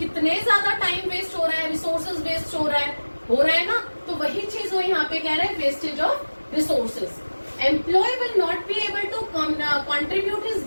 ज्यादा टाइम वेस्ट हो रहा है, रिसोर्सेज वेस्ट हो रहा है ना। तो वही चीज वो यहाँ पे कह रहे हैं, wastage of resources. Employ will not be able to contribute his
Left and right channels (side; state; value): both; inverted; correlation -1.00